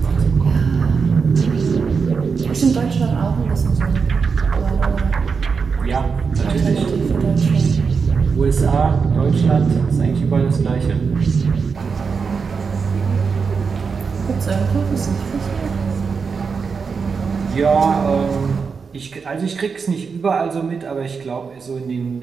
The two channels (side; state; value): left; quieter; 5.4 dB